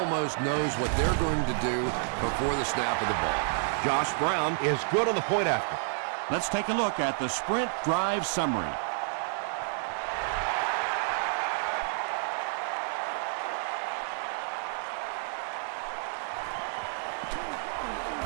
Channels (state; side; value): silent; left; 58 dB below the other